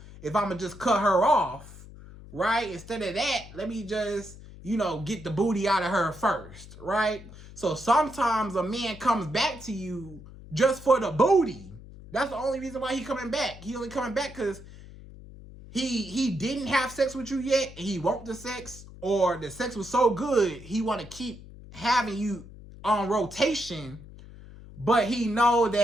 if I'm going to just cut her off, right? Instead of that, let me just, get the booty out of her first, right? So sometimes a man comes back to you just for the booty. That's the only reason why he's coming back. He only coming back because he didn't have sex with you yet, and he want the sex, or the sex was so good, he want to keep having you on rotation. But he know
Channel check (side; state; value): left; noise; hum, 17 dB below the sound